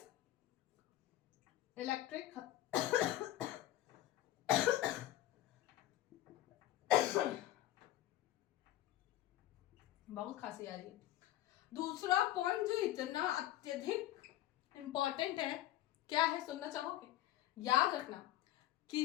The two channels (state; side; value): quieter; right; 14.5 dB